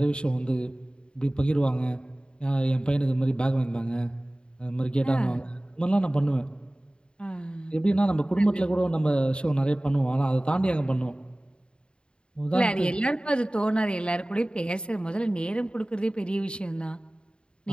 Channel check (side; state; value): right; late; 0.052 ms